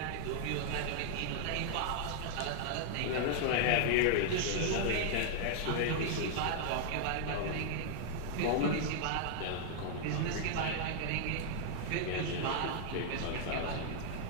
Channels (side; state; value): both; different; correlation -0.01